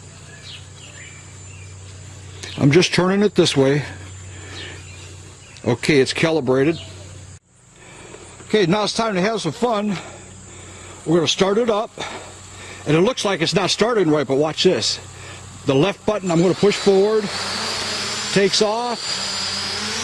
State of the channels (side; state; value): both; identical; correlation 1.00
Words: I'm just turning it this way. Okay, it's calibrated. Okay, now it's time to have some fun. We're going to start it up, and it looks like it's not starting right, but watch this. The left button I'm going to push forward, takes off.